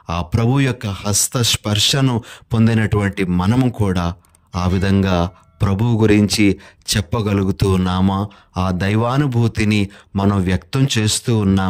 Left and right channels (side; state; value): both; identical; correlation 1.00